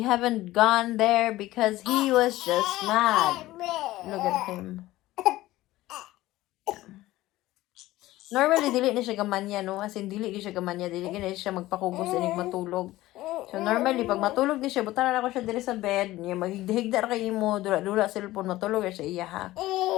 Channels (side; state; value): right; quieter; 16.8 dB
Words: haven't gone there because he was just mad. Look at him. Normally, dili na siya gamanya, no? As in, dili siya gamanya. Dili na siya magpakugos and matulog. So, normally, pag matulog di siya, butaran ako siya dili sa bed. Niya, maghigda kayo mo, dula cellphone, matulog siya iya, ha?